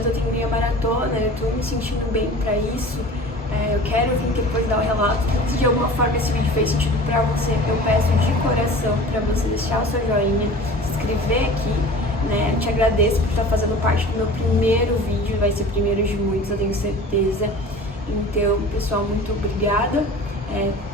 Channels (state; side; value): normal; both; correlation 0.41